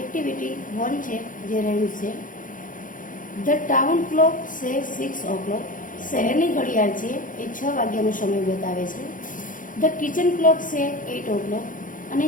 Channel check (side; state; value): right; late; 0.39 ms